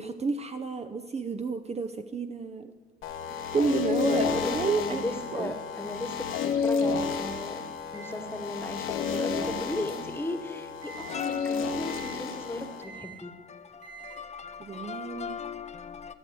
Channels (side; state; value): both; normal; correlation 0.53